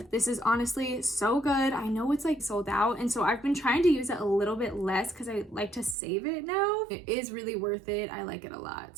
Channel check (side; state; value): left; drops out; at 6.0 s